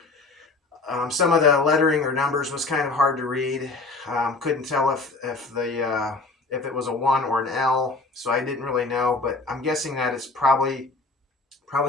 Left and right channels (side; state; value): right; quieter; 3.5 dB